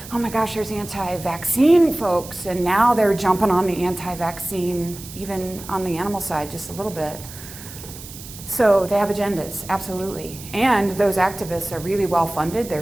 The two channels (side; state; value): right; noise; hiss, 15 dB below the sound